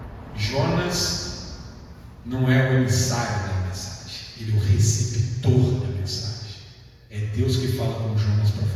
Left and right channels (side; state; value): both; identical; correlation 1.00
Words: Jonas não é o emissário da mensagem, ele é o receptor da mensagem. É Deus que fala com Jonas para